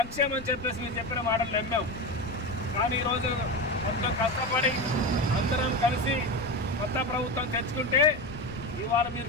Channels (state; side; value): noise; left; rumble, 14 dB below the sound